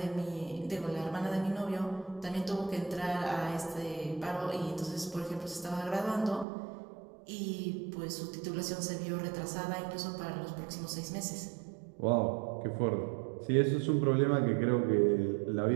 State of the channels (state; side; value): drops out; left; at 6.5 s